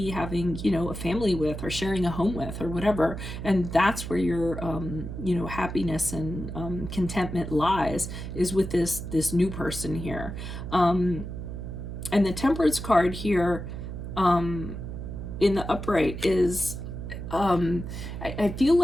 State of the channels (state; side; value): noise; right; hum, 7 dB below the sound